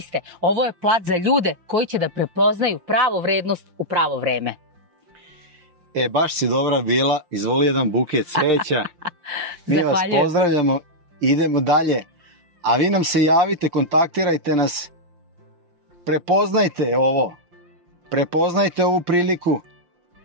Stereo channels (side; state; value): left; late; 5.7 ms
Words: ovo je plac za ljude koji će da prepoznaju pravu vrednost u pravo vreme. Baš si dobra bila, izvoli jedan buket cveća. Mi vas pozdravljamo, idemo dalje. A vi nam se javite, kontaktirajte nas, prepoznajte ovo, prepoznajte ovu priliku.